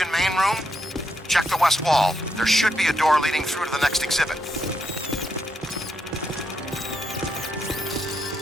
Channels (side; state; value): both; normal; correlation 0.81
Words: main room? Check the west wall. There should be a door leading through to the next exhibit.